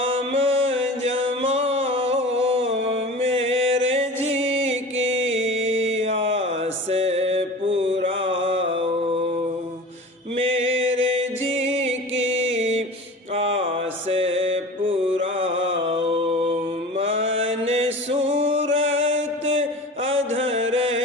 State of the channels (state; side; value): normal; both; correlation 0.36